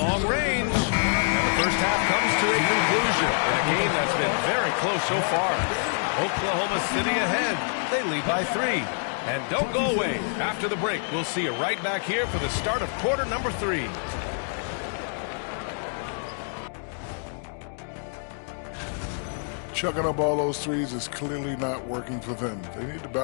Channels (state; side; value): silent; right; 61 dB below the other